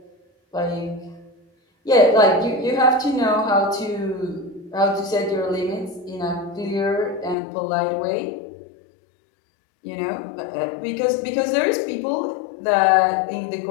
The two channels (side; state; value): right; drops out; at 7.4 s